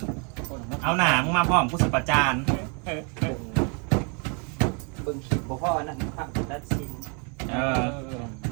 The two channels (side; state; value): left; quieter; 35.7 dB